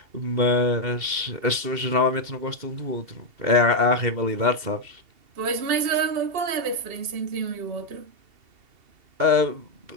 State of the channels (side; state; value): left; late; 2.7 ms